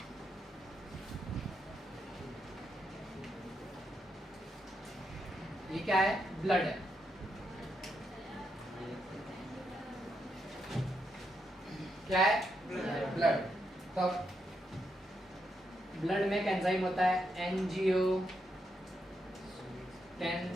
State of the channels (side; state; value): both; normal; correlation 0.81